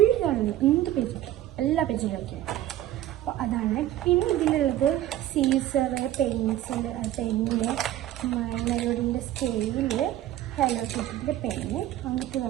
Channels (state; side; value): quieter; left; 13.4 dB